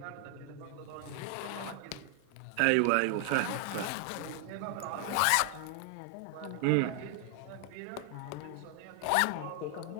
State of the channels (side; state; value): both; different; correlation 0.00